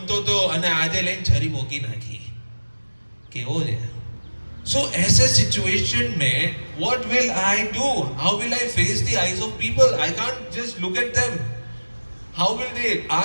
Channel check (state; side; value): inverted; both; correlation -1.00